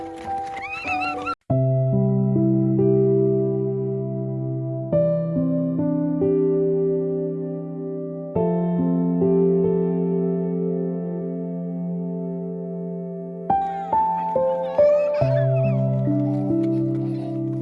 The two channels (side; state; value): both; identical; correlation 1.00